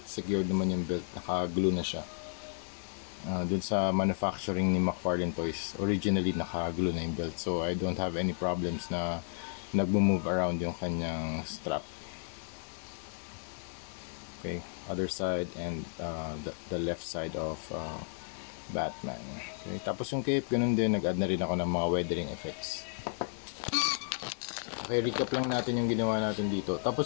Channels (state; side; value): silent; right; 56 dB below the other